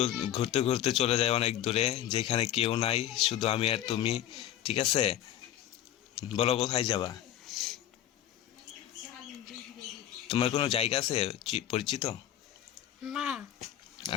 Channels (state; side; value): quieter; right; 11.8 dB